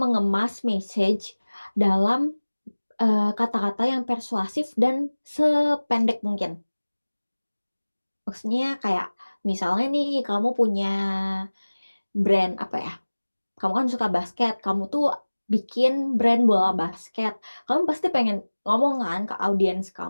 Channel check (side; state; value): both; inverted; correlation -1.00